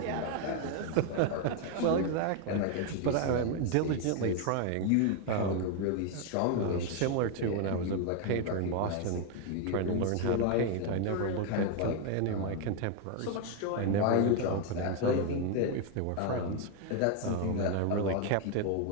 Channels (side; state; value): both; different; correlation 0.01